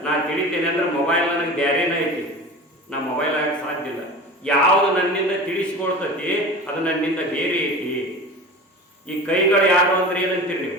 ನಾ ತಿಳಿತೇನೆ ಅಂದ್ರೆ ಮೊಬೈಲ್ ನನಗೆ ಬೇರೆನೇ ಐತಿ, ನಾ ಮೊಬೈಲ್ ಆಗಕ್ಕೆ ಸಾಧ್ಯ ಇಲ್ಲ. ಯಾವುದು ನನ್ನಿಂದ ತಿಳಿಸ್ಕೊಳ್ತೈತಿ ಅದು ನನ್ನಿಂದ ಬೇರೆ ಐತಿ. ಈ ಕೈಗಳು ಯಾರು ಅಂದ್ರೆ ಏನಂತೀರಿ ನೀವು?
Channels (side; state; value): both; normal; correlation 0.34